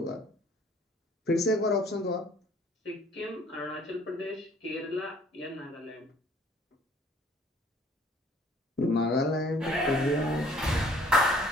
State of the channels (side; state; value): both; normal; correlation 0.56